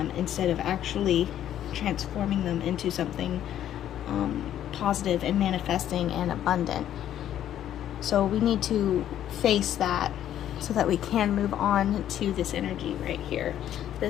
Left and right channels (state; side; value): quieter; right; 11.2 dB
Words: instead of actually transforming them into something positive and manifesting and abundant. So we need to face that so that we can move on to this energy right here,